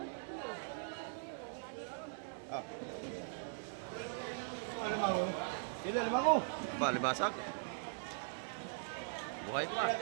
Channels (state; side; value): silent; left; digital silence